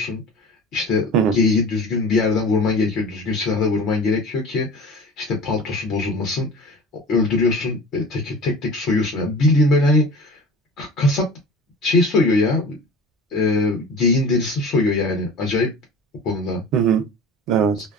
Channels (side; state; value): both; normal; correlation 0.38